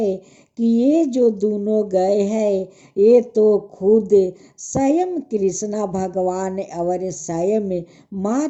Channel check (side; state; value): both; identical; correlation 1.00